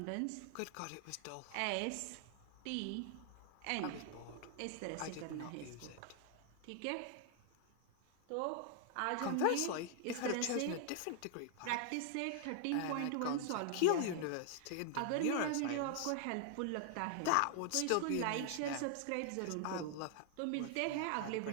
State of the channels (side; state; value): both; different; correlation 0.00